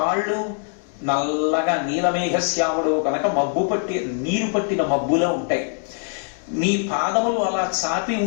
నల్లగా నీలమేఘశ్యాముడు కనుక మబ్బు పట్టి నీరు పట్టిన మబ్బులో ఉంటాయి. నీ పాదములు అలా చాపి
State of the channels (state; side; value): silent; right; 57 dB below the other